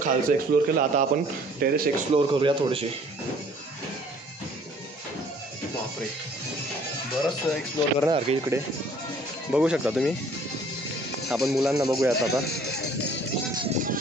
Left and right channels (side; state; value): both; normal; correlation 0.56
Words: खालचं एक्सप्लोअर केलं आता आपण टेरेस एक्सप्लोअर करूया थोडेसे. बापरे बरंच एक्सप्लोअर करणार की इकडे बघू शकता तुम्ही. आपण मुलांना बघूयात आता.